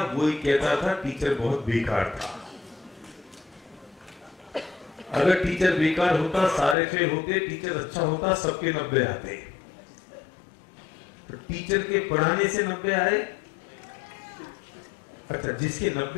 वो ही कहता था टीचर बहुत बेकार था। अगर टीचर बेकार होता, सारे फेल होते, टीचर अच्छा होता, सबके 90 आते। तो टीचर के पढ़ाने से 90 आए। अच्छा, जिसके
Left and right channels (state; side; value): drops out; right; at 6.8 s